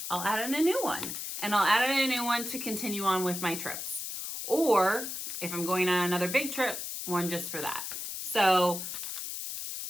I'll add in a new one. And I'll add in a new one to continue on with my trips. Or if I'm going on another big trip, one just for that. So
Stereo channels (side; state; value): left; noise; hiss, 5 dB below the sound